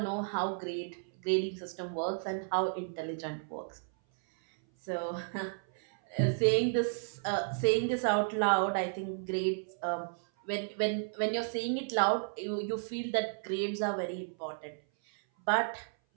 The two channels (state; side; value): silent; left; 56 dB below the other